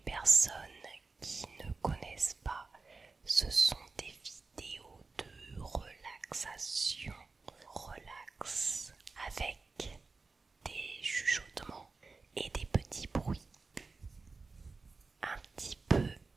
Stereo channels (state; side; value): quieter; left; 4.0 dB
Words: qui ne connaissent pas, ce sont des vidéos de relaxation, relax, avec des chuchotements et des petits bruits un petit peu